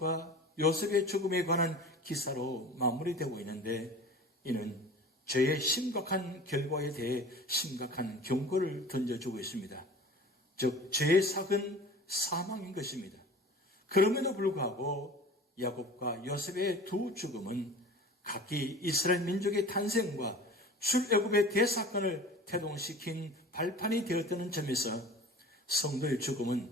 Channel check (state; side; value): normal; both; correlation 0.41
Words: 요셉의 죽음에 관한 기사로 마무리되고 있는데, 이는 죄의 심각한 결과에 대해 심각한 경고를 던져주고 있습니다. 즉 죄의 삭은 사망인 것입니다. 그럼에도 불구하고 야곱과 요셉의 두 죽음은 각기 이스라엘 민족의 탄생과 출애굽의 대사건을 태동시킨 발판이 되었다는 점에서 성도의